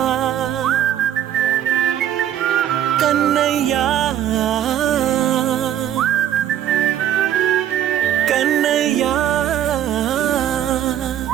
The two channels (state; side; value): quieter; left; 10.7 dB